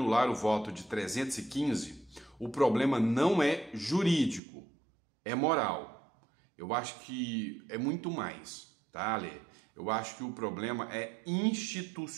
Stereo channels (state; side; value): drops out; left; at 4.4 s